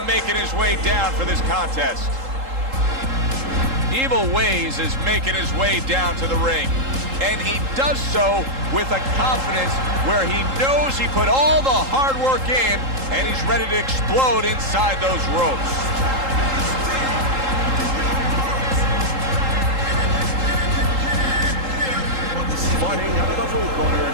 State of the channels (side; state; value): left; late; 3.8 ms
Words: making his way down for this contest. Evil Ways is making his way down to the ring, and he does so with a confidence where he knows he put all the hard work in, and he's ready to explode inside those ropes. Fighting out of the blue corner,